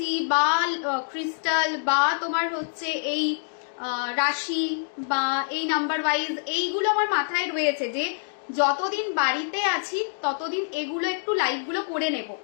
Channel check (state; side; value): silent; right; digital silence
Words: বা ক্রিস্টাল বা তোমার হচ্ছে এই রাশি বা এই নাম্বার ওয়াইজ, এইগুলো আমার মাথায় রয়েছে যে যতদিন বাড়িতে আছি ততদিন এগুলো একটু লাইভগুলো করে নেব।